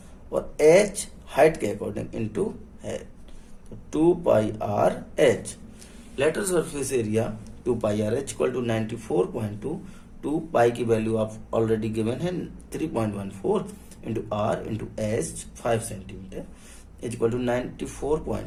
और h हाइट के अकॉर्डिंग इनटू है, तो 2πr/h। Lateral surface area 2πr/h equal to 94.2, 2 pi की वैल्यू आप ऑलरेडी गिवन है 3.14 into r into h 5 centimetre is equal to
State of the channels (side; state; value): both; identical; correlation 1.00